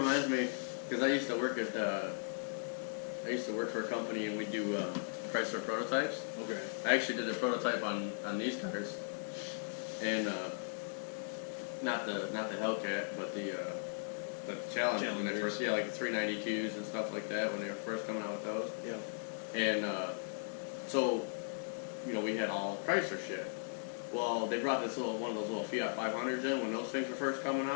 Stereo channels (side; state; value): right; silent; 53 dB below the other